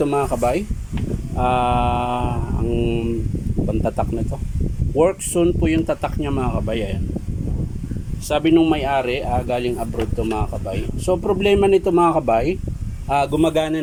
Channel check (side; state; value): both; identical; correlation 1.00